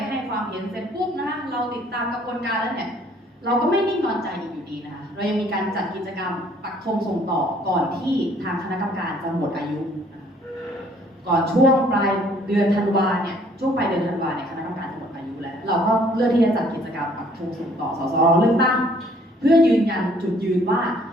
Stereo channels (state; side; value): normal; both; correlation 0.60